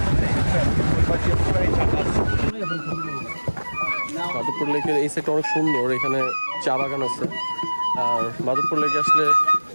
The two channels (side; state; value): both; inverted; correlation -1.00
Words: মাধবপুর লেকের এই সাইডটা অনেক সুন্দর, এখানে চা বাগান আছে। আর মাধবপুর লেকে আসলে